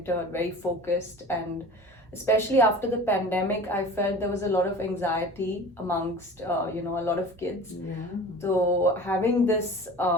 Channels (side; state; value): both; normal; correlation 0.39